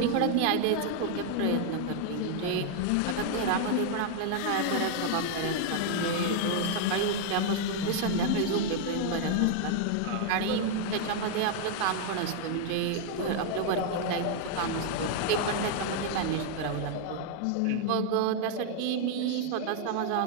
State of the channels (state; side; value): different; both; correlation 0.00